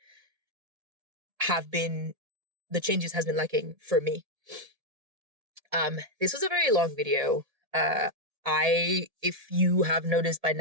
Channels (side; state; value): left; late; 1.7 ms